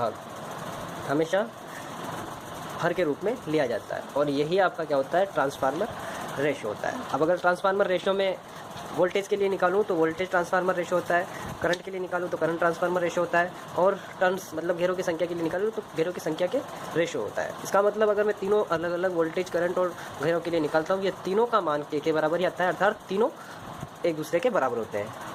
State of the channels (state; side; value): identical; both; correlation 1.00